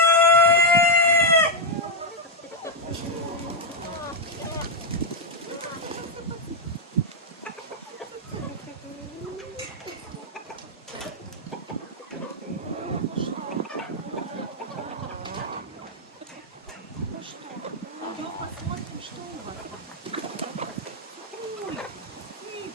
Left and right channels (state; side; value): normal; both; correlation 0.00